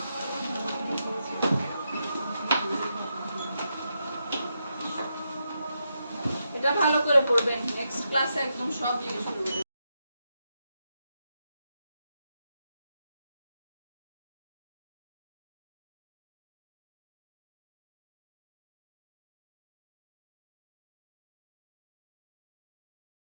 এটা ভালো করে পড়বেন, নেক্সট ক্লাসে একদম সব জিনিস পড়বেন।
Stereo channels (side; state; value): both; inverted; correlation -0.84